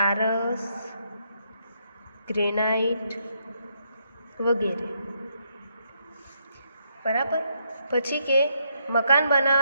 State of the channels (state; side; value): inverted; both; correlation -0.77